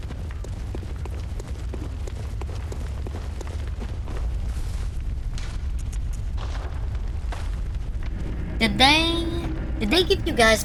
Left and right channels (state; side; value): identical; both; correlation 1.00